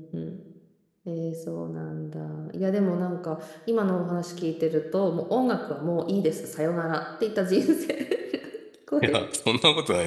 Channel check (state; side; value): identical; both; correlation 1.00